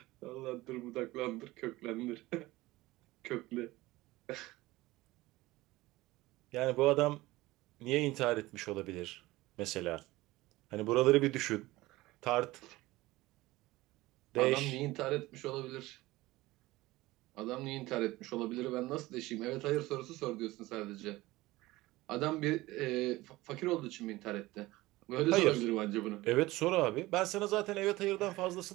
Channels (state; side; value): quieter; left; 19.0 dB